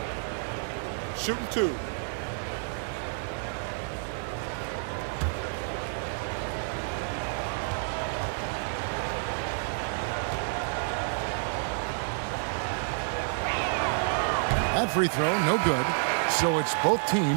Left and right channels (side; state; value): left; silent; 58 dB below the other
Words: Shooting 2. That free throw, no good. So it's both